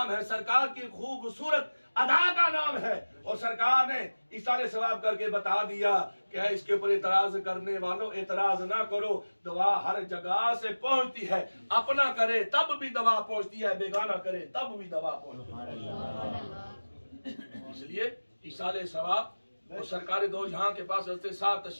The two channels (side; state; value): both; inverted; correlation -1.00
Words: है, सरकार की खूबसूरत अदा का नाम है। और सरकार ने इशारे सवाब करके बता दिया कि इसके ऊपर एतराज करने वालों एतराज ना करो, दवा हर जगह से पहुंचती है, अपना करे तब भी दवा पहुंचती है, बेगाना करे तब भी दवा पहुंचती है। इसलिए इशारे सवाब और सरकार दो जहां के पास हज़रत साहब